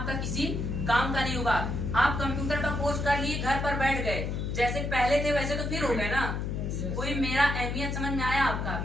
किसी काम का नहीं होगा। आप कंप्यूटर का कोर्स कर लिए, घर पर बैठ गए, जैसे पहले थे वैसे तो फिर हो गए ना। कोई मेरा अहमियत समझ में आया आपका,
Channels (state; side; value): noise; left; hum, 2 dB below the sound